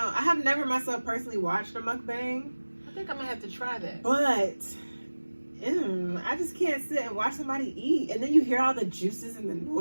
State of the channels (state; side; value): inverted; both; correlation -1.00